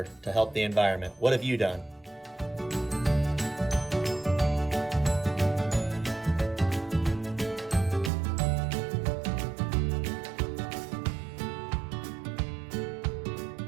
to help the environment. What have you done?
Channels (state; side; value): drops out; left; at 8.1 s